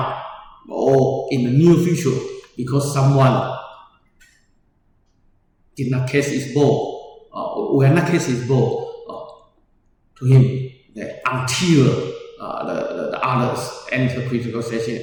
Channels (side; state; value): both; identical; correlation 1.00